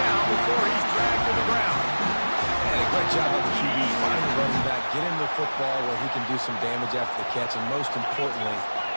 before he's dragged to the ground. And a great job on the QB, finding the running back, get him the football where he can do some damage after the catch, and most importantly,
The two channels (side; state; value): both; inverted; correlation -1.00